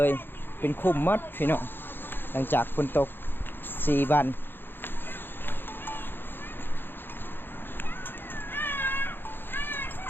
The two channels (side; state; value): right; late; 0.099 ms